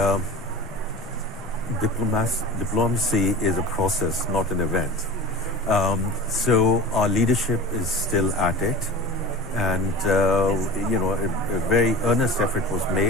diplomacy is a process, not an event. So our leadership is still at it, and a very earnest effort was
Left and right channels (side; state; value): both; normal; correlation 0.36